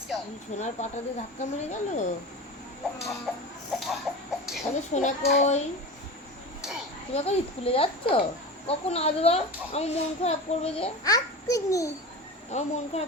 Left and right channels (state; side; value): normal; both; correlation 0.29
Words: সোনার পাটা দিয়ে ধাক্কা মেরে গেল। আমি সোনা কই? তুমি এখন স্কুলে যাচ্ছ? কখন আসবা? আমার মন খারাপ করবে যে। এক্ষুনি আমার মন